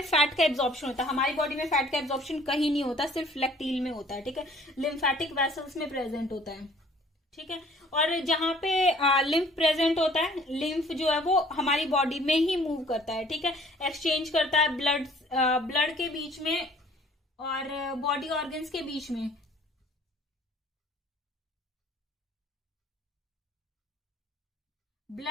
फैट का एब्जॉर्प्शन होता है, हमारी बॉडी में फैट का एब्जॉर्प्शन कहीं नहीं होता, सिर्फ लैक्टिल में होता है, ठीक है। लिम्फेटिक वेसल्स में प्रेजेंट होता है, ठीक है। और जहां पे लिम्फ प्रेजेंट होता है, लिम्फ जो है वो हमारी बॉडी में ही मूव करता है, ठीक है, एक्सचेंज करता है ब्लड के बीच में और बॉडी ऑर्गन्स के बीच में।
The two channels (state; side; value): normal; both; correlation 0.55